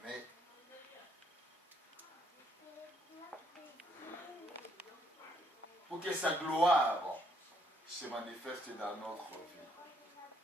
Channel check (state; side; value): normal; both; correlation 0.69